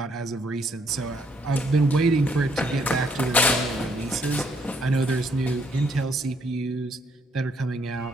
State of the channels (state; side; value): normal; both; correlation 0.69